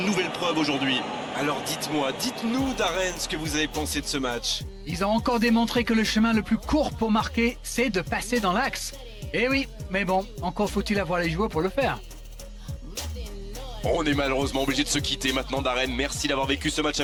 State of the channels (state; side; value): identical; both; correlation 1.00